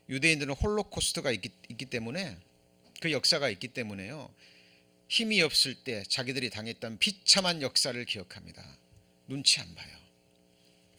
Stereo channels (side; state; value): both; identical; correlation 1.00